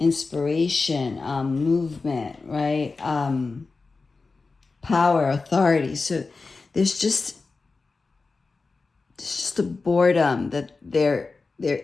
movement, right? Power, authority. So there's just a boredom that there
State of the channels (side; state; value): right; quieter; 4.0 dB